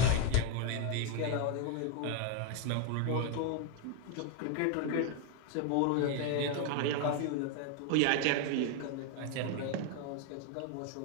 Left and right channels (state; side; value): different; both; correlation 0.01